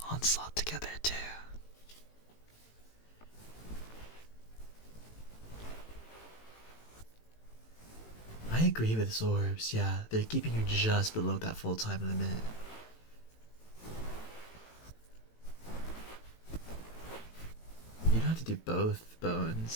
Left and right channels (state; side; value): late; right; 18 ms